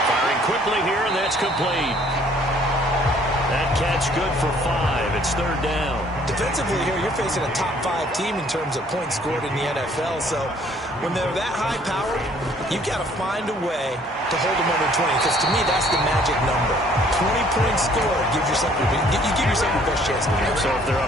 Firing quickly here, and that's complete. That catch good for 5. It's third down. Defensively here, you're facing a top 5 team in terms of points scored in the NFL. So when they're that high powered, you've got to find a way to hold them under 20. Because to me, that's the magic number. 20 points scored gives yourself you give yourself your best chance to win. So if they're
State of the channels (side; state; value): both; normal; correlation 0.59